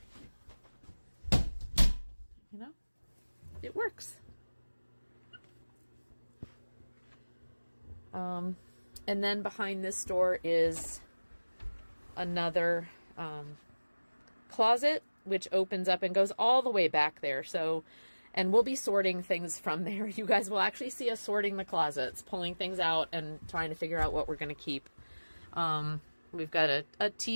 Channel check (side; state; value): both; inverted; correlation -1.00